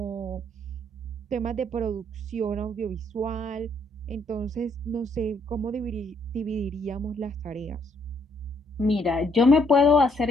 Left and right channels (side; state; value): both; normal; correlation 0.69